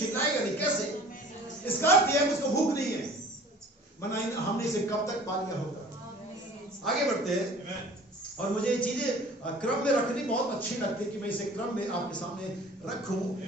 नहीं, कैसे? इसका अर्थ यह है उसको भूख नहीं है, वरना हमने इसे कब तक पा लिया होगा। आगे बढ़ते हैं। और मुझे ये चीजें क्रम में रखनी बहुत अच्छी लगती है कि मैं इसे क्रम में आपके सामने रखूं।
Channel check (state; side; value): normal; both; correlation 0.46